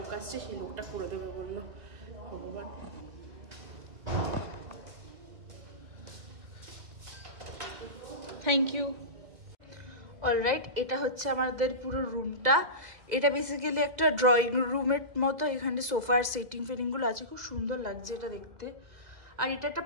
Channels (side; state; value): left; late; 2.0 ms